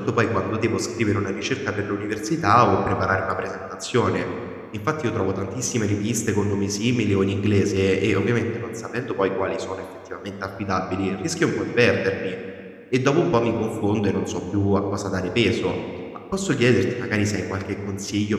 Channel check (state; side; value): identical; both; correlation 1.00